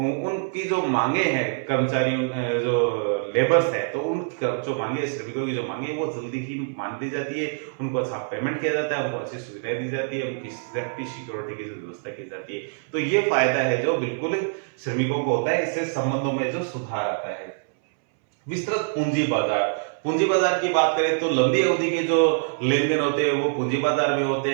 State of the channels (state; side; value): silent; left; 62 dB below the other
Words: जो मांगे हैं कर्मचारियों, जो लेबर्स है, तो उन जो मांगे, श्रमिकों की जो मांगे वो जल्दी ही मान ली जाती है, उनको अच्छा पेमेंट किया जाता है, उनको अच्छी सुविधाएं दी जाती है, उनकी सेफ्टी सिक्योरिटी की व्यवस्था की जाती है। तो ये फायदा है जो बिल्कुल श्रमिकों को होता है, इससे संबंधों में जो सुधार आता है। विस्तृत पूंजी बाजार। पूंजी बाजार की बात करें तो लंबी अवधि के जो लेन देन होते हैं वो पूंजी बाजार में होते